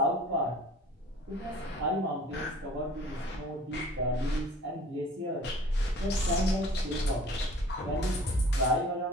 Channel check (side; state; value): both; normal; correlation 0.48